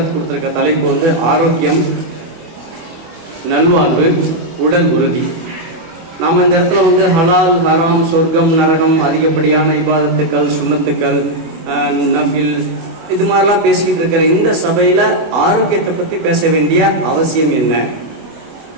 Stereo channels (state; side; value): late; left; 24 ms